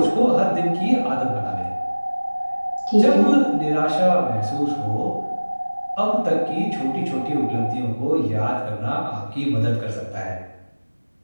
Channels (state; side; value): inverted; both; correlation -1.00